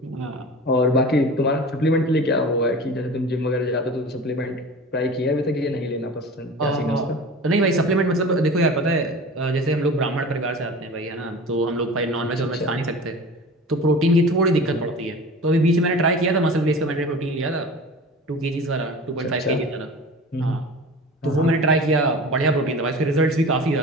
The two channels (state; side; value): normal; both; correlation 0.36